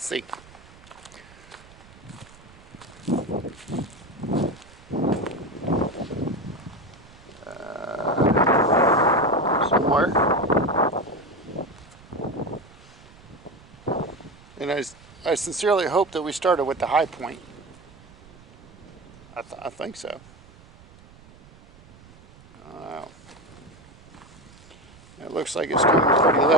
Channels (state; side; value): noise; right; rumble, 23 dB below the sound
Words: see. Somewhere. And I sincerely hope that we started with the high point. I think so. Wow. It looks like it's coming pretty